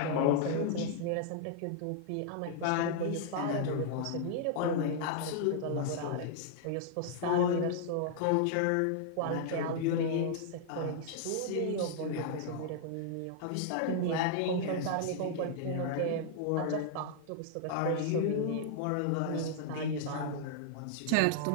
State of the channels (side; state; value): both; different; correlation -0.01